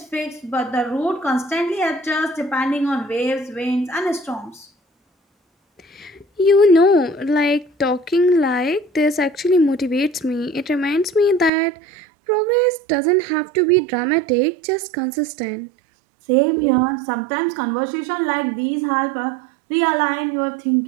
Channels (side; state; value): left; drops out; at 11.5 s